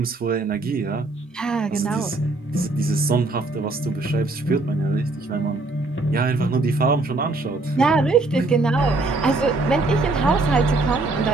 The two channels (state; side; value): quieter; left; 3.1 dB